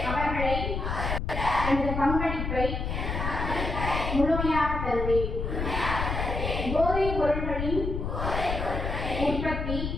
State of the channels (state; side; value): noise; left; rumble, 3 dB below the sound